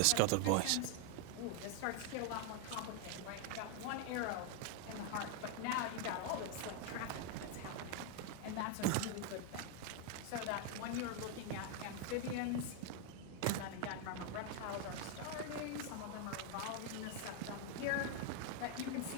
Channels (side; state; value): both; different; correlation 0.00